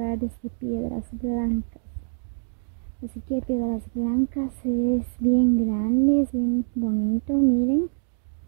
de Piedras Blancas. Así que Piedras Blancas es bien grande, es bien bonito, miren.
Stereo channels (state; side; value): silent; left; digital silence